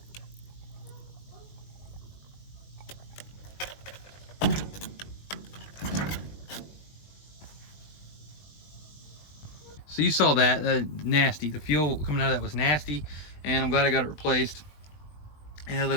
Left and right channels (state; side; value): late; right; 20 ms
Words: So you saw that, nasty. The fuel coming out of that was nasty, and I'm glad I got it replaced. It had a